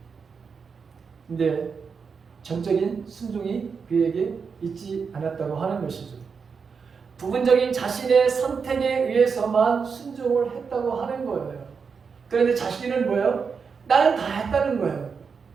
근데 전적인 순종이 그에게 있지 않았다고 하는 것이죠. 부분적인 자신의 선택에 의해서만 순종을 했다고 하는 거예요. 그런데 자신은 뭐예요? 나는 다 했다는 거예요.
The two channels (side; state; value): left; quieter; 5.7 dB